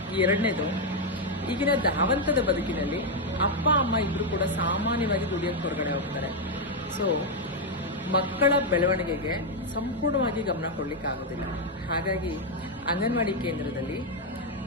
ಎರಡನೇದು, ಈಗಿನ ಧಾವಂತದ ಬದುಕಿನಲ್ಲಿ ಅಪ್ಪ ಅಮ್ಮ ಇಬ್ರು ಕೂಡ ಸಾಮಾನ್ಯವಾಗಿ ದುಡಿಯೋಕೆ ಹೊರಗಡೆ ಹೋಗ್ತಾರೆ. ಸೊ ಮಕ್ಕಳ ಬೆಳವಣಿಗೆಗೆ ಸಂಪೂರ್ಣವಾಗಿ ಗಮನ ಕೊಡ್ಲಿಕ್ಕೆ ಆಗೋದಿಲ್ಲ. ಹಾಗಾಗಿ ಅಂಗನವಾಡಿ ಕೇಂದ್ರದಲ್ಲಿ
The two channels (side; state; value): both; normal; correlation 0.02